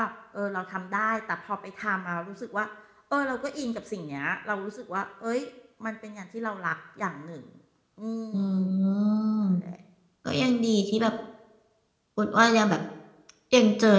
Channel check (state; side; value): identical; both; correlation 1.00